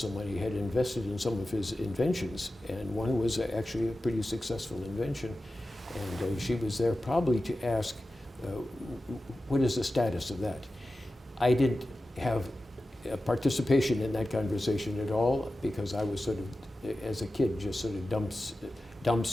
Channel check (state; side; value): normal; both; correlation 0.94